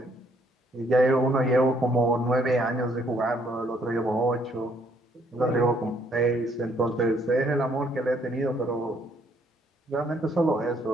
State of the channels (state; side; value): normal; both; correlation 0.67